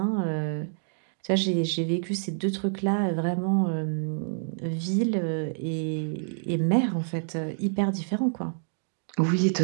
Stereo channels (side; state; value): left; silent; digital silence